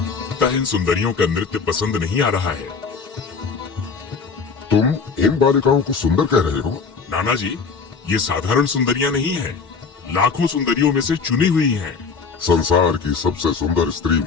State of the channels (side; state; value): right; quieter; 5.2 dB